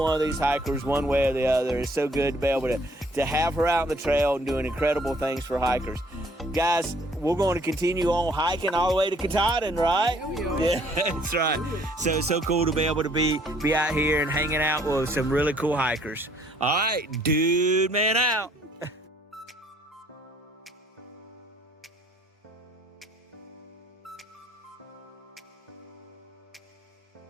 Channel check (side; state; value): both; normal; correlation 0.61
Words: of these hikers one way or the other. It's so good to be able to have her out on the trail and doing incredible things for hikers. Guys, we're going to continue on hiking all the way to Katahdin, right? Yeah, we are. Yeah, that's right. So it's so cool to be able to be out here and hanging out with some really cool hikers. All right, DudeMan out.